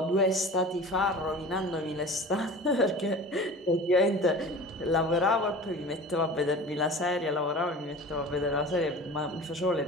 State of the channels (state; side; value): normal; both; correlation 0.38